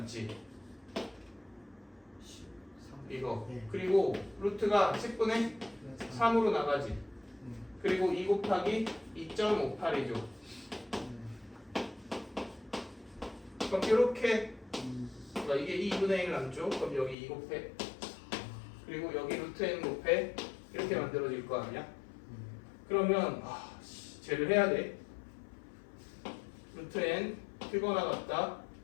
이거. 네. 그리고 루트가 10분의 3으로 나가지. 그리고 2 곱하기 2.58이죠. 그럼 이렇게 그러니까 이게 2분의 1 남죠. 그럼 여기 2 곱해. 그리고 여기 루트 n 곱해. 이렇게 만들어질 거 아니야? 그러면 쟤를 해야 돼. 루트 n 크거나 같다.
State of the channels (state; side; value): drops out; right; at 17.2 s